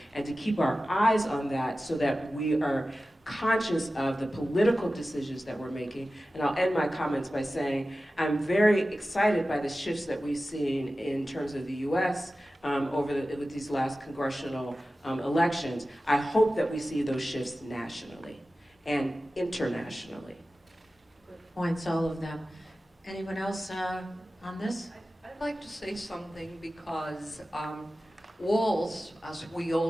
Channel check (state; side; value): normal; both; correlation 0.95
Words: and to keep our eyes on that so that we are conscious of the political decisions that we're making. And I'll end my comments by saying I'm very excited by the shifts that we've seen in terms of the US with these last congressional elections. I hope that we see those shifts nationally and internationally. Good points, all of them. Anyone else on this? I'd like to say something because walls, as we